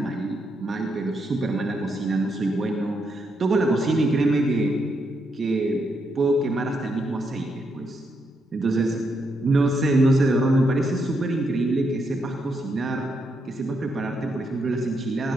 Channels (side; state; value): both; normal; correlation 0.80